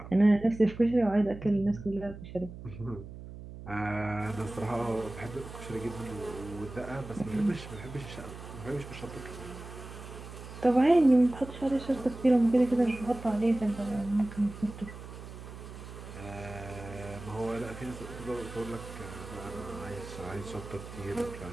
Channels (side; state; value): right; noise; hum, 13 dB below the sound